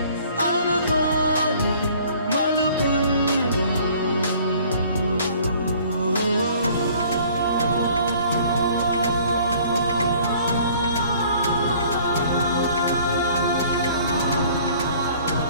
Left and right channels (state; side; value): inverted; both; correlation -0.54